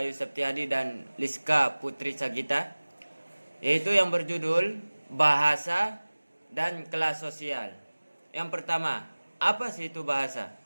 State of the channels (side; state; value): both; inverted; correlation -1.00